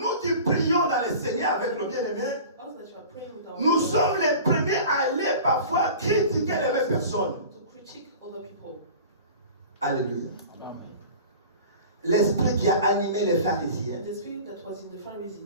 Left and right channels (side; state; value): both; inverted; correlation -0.39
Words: qui prions dans le Seigneur avec le bien-aimé, Us that you are praying with our nous brother, sommes les premiers à aller parfois critiquer les mêmes personnes. to critique other people. Alléluia. L'esprit qui a animé les pharisiens. The spirit that was in the